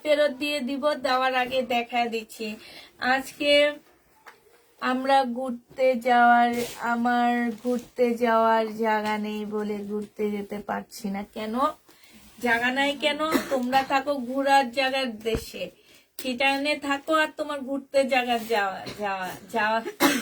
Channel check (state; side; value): identical; both; correlation 1.00